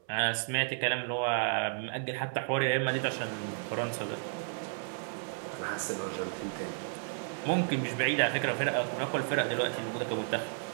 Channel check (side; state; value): left; silent; 56 dB below the other